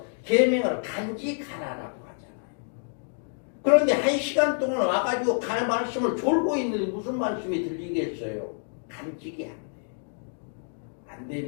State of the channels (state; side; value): silent; right; digital silence